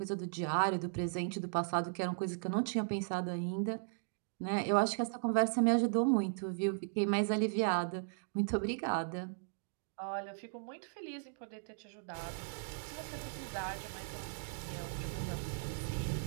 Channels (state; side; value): silent; left; digital silence